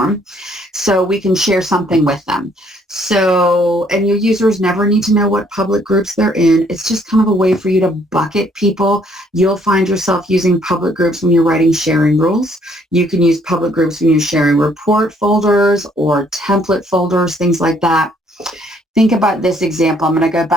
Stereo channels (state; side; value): normal; both; correlation 0.65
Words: so we can share something with them. So, and your users never need to know what public groups they're in. It's just kind of a way for you to bucket people. You'll find yourself using public groups when you're writing sharing rules. You can use public groups when you're sharing report folders or template folders, things like that. Think about this example. I'm going to go